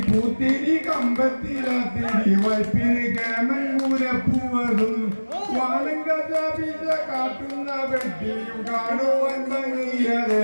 പൂത്തിരി കമ്പത്തിരാത്തിരി വൈപ്പിന് കേമൻ കൂരപ്പൂവതും വാനം കഥാപിച്ച കാട്ടുന്ന വെട്ടിയും കാണുവാൻ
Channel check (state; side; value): inverted; both; correlation -1.00